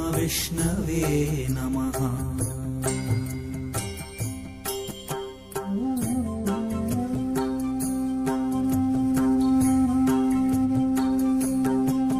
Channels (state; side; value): identical; both; correlation 1.00